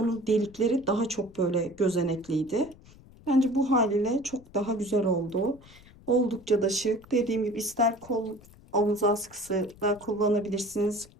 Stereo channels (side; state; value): left; noise; rumble, 23 dB below the sound